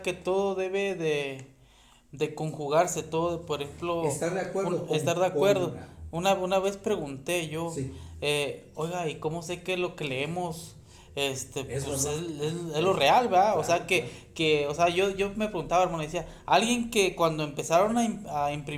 que todo debe de conjugarse, todo, por ejemplo. Estar de acuerdo. Estar de acuerdo. Una vez pregunté yo, Sí. oiga, ¿y cómo sé que lo que leemos pues es verdad. lo real, ¿verdad? Claro, O sea, o sea, yo me preguntaba, hermano, decía, alguien que cuando empezaron a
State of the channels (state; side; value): identical; both; correlation 1.00